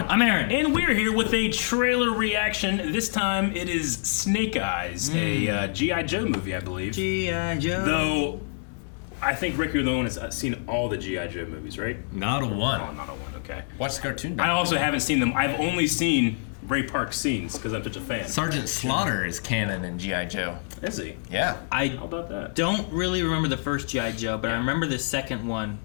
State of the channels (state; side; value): silent; right; digital silence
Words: I'm Aaron. And we're here with a trailer reaction. This time it is Snake Eyes, a G.I. Joe movie, I believe. G.I. Joe. Though, I think Rick, you're the one that's seen all the G.I. Joe movies, right? Not a one. Oh, not a one, okay. Watch the cartoon. I also haven't seen them. I've only seen Ray Park scenes because I'm such a fan. Sergeant Slaughter is canon in G.I. Joe. Is he? Yeah. How about that? Don't really remember the first G.I. Joe, but I remember the second one